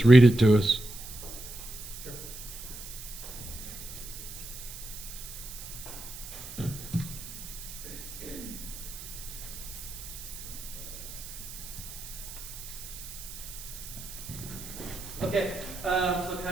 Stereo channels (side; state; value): right; noise; hiss, 11 dB below the sound